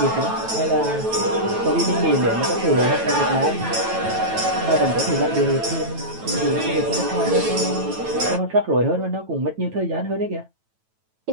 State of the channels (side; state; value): left; late; 9.1 ms